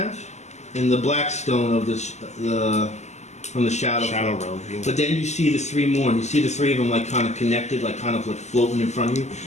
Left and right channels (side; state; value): right; late; 0.33 ms